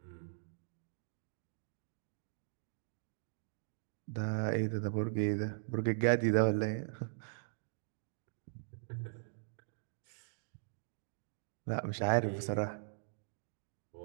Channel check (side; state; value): left; silent; digital silence